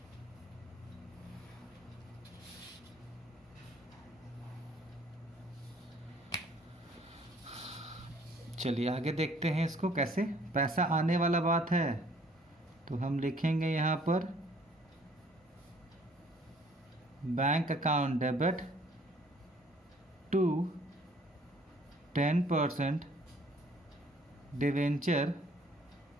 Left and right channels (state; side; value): normal; both; correlation 0.59